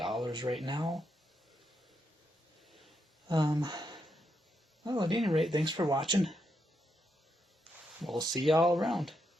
right now. Well, at any rate, thanks for watching. We'll see y'all around.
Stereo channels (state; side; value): normal; both; correlation 0.81